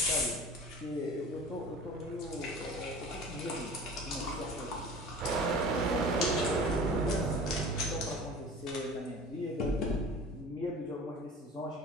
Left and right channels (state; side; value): normal; both; correlation 0.40